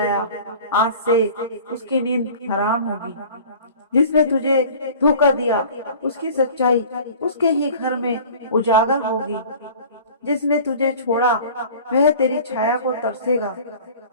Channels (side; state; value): both; inverted; correlation -0.44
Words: आज से उसकी नींद हराम होगी। जिसने तुझे धोखा दिया उसकी सच्चाई उसके ही घर में उजागर होगी। जिसने तुझे छोड़ा वह तेरी छाया को तरसेगा।